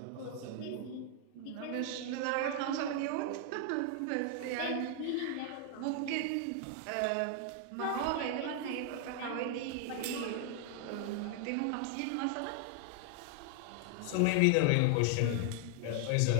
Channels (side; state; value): both; different; correlation 0.00